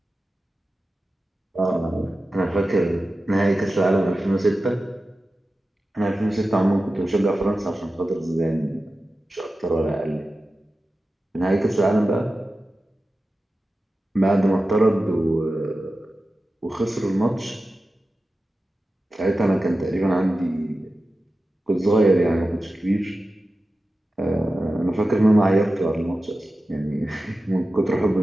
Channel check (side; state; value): both; normal; correlation 0.94